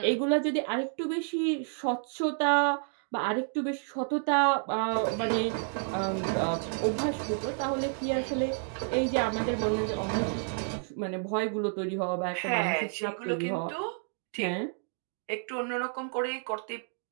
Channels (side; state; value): left; silent; 58 dB below the other